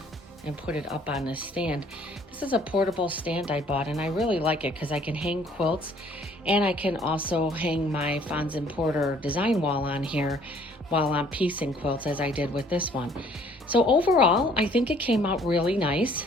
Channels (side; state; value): both; normal; correlation 0.59